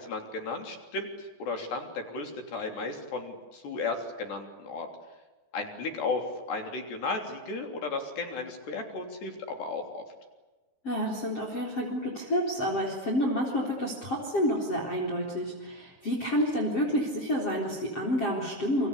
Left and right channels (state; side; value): late; right; 7.6 ms